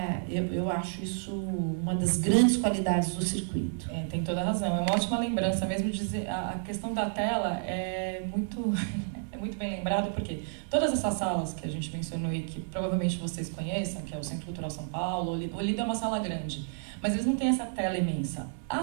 eu acho isso uma das grandes qualidades do circuito. Tem toda a razão, é uma ótima lembrança mesmo dizer, a questão da tela é muito bem lembrado, porque todas essas salas que a gente mencionou e que provavelmente vocês conheçam, que é o Centro Cultural São Paulo, o Olido é uma sala grande, mas eles não têm essa tela imensa.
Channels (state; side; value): silent; left; digital silence